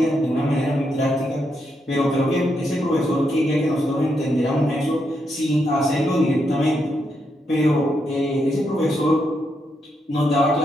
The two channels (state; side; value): normal; both; correlation 0.81